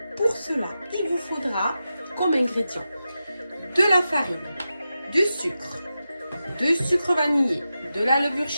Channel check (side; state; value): both; inverted; correlation -0.90